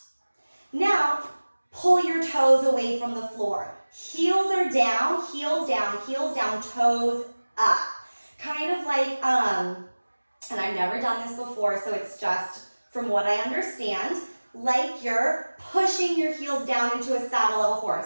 Now, pull your toes away from the floor. Heels are down, heels down, heels down, toes up. Kind of like, and I've never done this before, so it's just from what I understand, like you're pushing your heels down into a saddle of a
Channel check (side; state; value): both; inverted; correlation -1.00